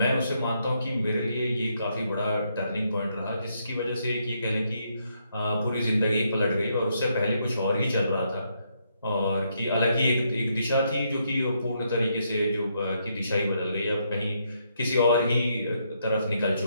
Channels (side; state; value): both; inverted; correlation -0.76